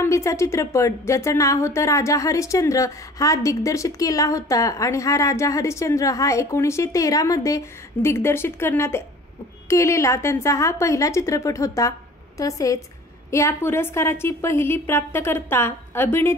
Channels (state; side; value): normal; both; correlation 0.46